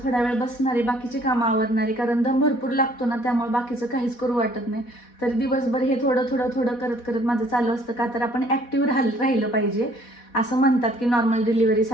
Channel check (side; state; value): right; late; 4.1 ms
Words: थोडा वेळ बसणारे, बाकीची कामं आवरणारे, कारण दम भरपूर लागतो ना त्यामुळे बाकीचं काहीच करू वाटत नाही. तरी दिवसभर हे थोडं थोडं थोडं करत करत माझं चालू असतं. का तर आपण ॲक्टिव्ह राहिलं पाहिजे. असं म्हणतात की नॉर्मल